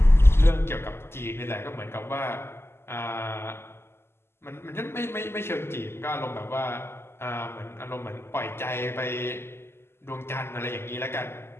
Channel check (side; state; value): right; late; 0.12 ms